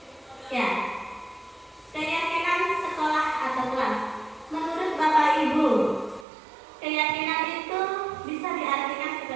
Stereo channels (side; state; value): left; drops out; at 6.2 s